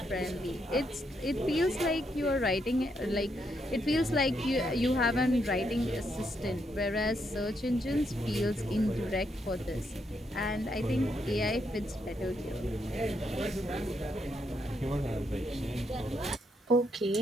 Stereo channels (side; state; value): both; normal; correlation 0.78